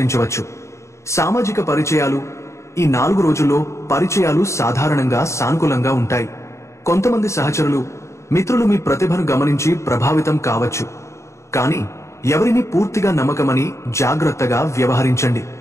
సామాజిక పరిచయాలు ఈ 4 రోజుల్లో పరిచయాలు సాధారణంగా సానుకూలంగా ఉంటాయి. కొంతమంది సహచరులు, మిత్రులు మీ ప్రతిభను గమనించి ప్రభావితం కావచ్చు. కానీ ఎవరిని పూర్తిగా నమ్మకమని జాగ్రత్తగా వ్యవహరించండి.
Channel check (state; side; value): late; right; 0.14 ms